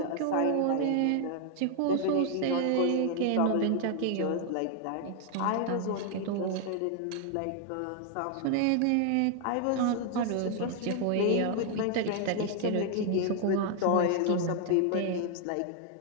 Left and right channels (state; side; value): different; both; correlation 0.00